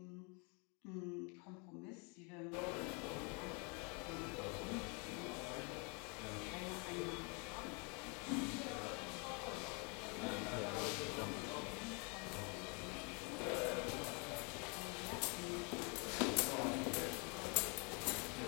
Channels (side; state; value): right; quieter; 33.5 dB